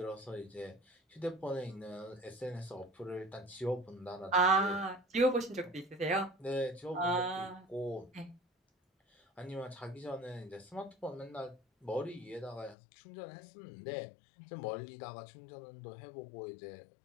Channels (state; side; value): drops out; right; at 12.8 s